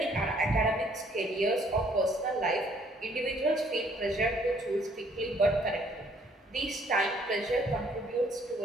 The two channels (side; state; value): both; normal; correlation 0.63